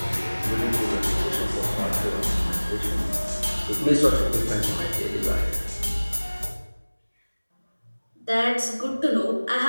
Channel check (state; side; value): inverted; both; correlation -1.00